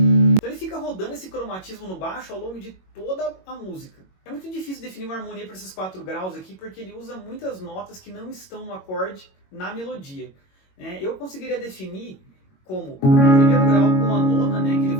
ele fica rodando esse cromatismo no baixo ao longo de toda a música. É muito difícil definir uma harmonia para esses 4 graus aqui, porque ele usa muitas notas que não estão no acorde na melodia. Eu conseguiria definir como o primeiro grau com a nona, né, que ele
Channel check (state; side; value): late; right; 21 ms